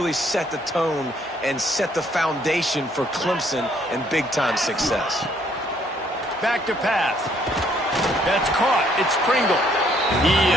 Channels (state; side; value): normal; both; correlation 0.66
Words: set the tone and set the foundation for Clemson and big-time success. Back to pass. That's caught. It's Pringle. He